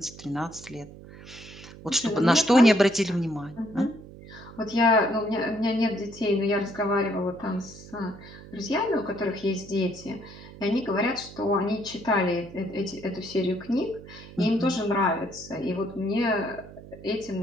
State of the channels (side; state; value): right; noise; hum, 17 dB below the sound